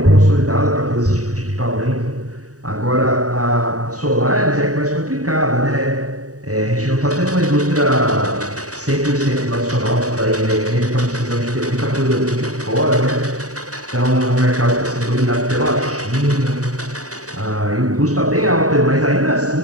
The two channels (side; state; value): left; late; 0.66 ms